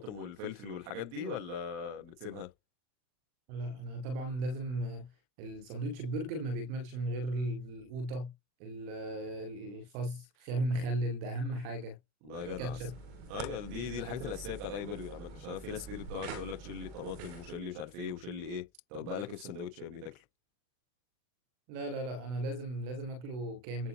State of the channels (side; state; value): left; late; 40 ms